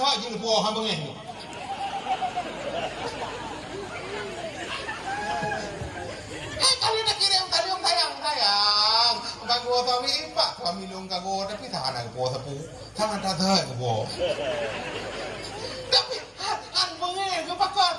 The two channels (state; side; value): identical; both; correlation 1.00